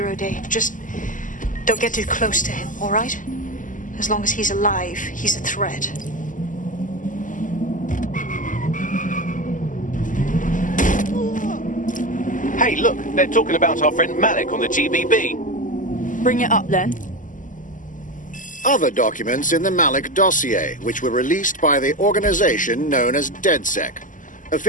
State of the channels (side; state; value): right; late; 0.38 ms